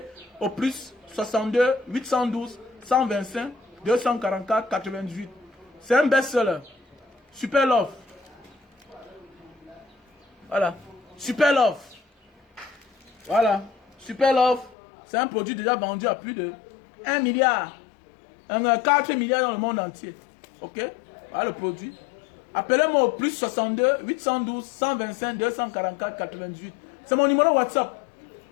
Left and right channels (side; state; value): right; drops out; at 14.8 s